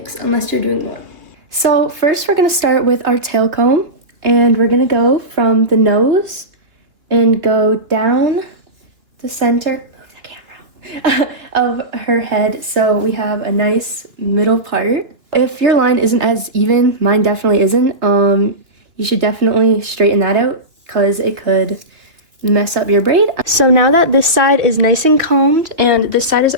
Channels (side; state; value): left; late; 2.7 ms